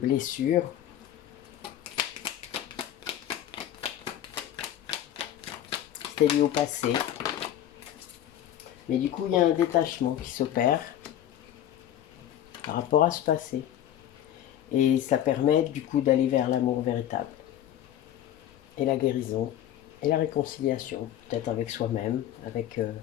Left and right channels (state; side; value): quieter; right; 11.4 dB